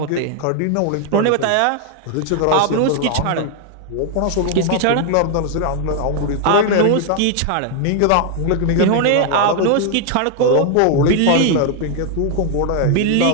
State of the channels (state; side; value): different; both; correlation 0.00